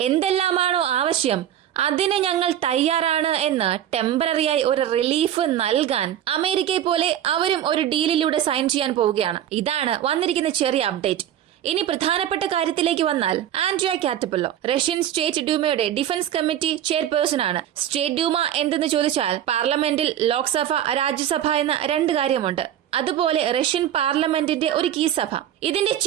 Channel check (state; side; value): quieter; left; 11.0 dB